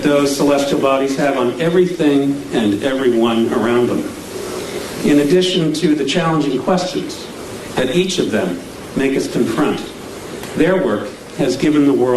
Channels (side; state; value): both; identical; correlation 1.00